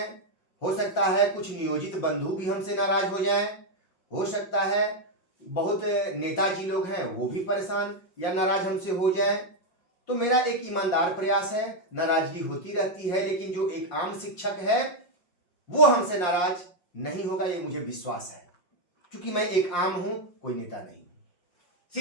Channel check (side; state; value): right; late; 5.6 ms